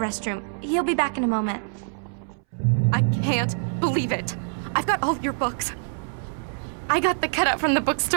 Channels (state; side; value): silent; left; 62 dB below the other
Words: He'll be back in a moment. I can't believe it. I've got all your books. I got the cutout from the